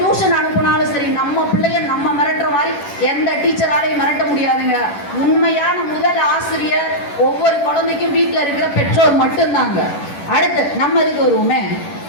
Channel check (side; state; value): right; late; 10 ms